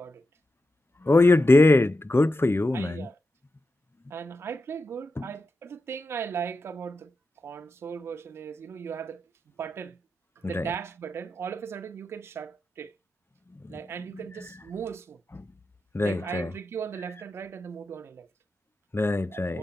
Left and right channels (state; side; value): normal; both; correlation 0.89